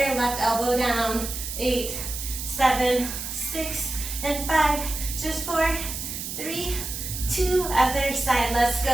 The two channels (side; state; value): right; noise; hiss, 6 dB below the sound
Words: left elbow down. 8, 7, 6, and 5. Just 4, 3, 2. Other side. Let's